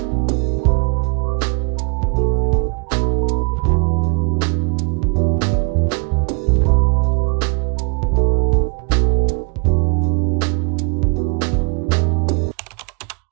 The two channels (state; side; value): quieter; left; 35.2 dB